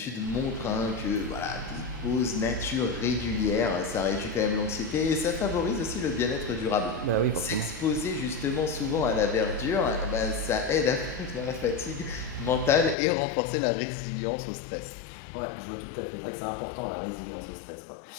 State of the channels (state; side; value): drops out; right; at 13.0 s